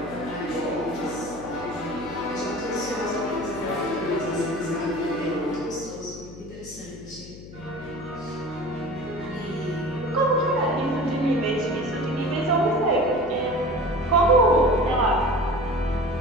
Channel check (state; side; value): noise; left; hum, 15 dB below the sound